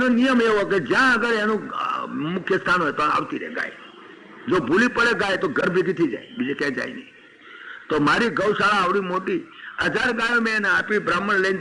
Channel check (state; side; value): identical; both; correlation 1.00